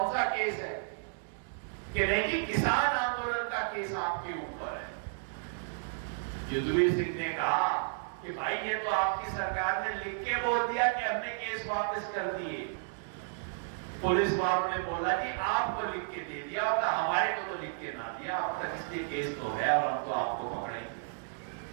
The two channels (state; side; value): silent; left; digital silence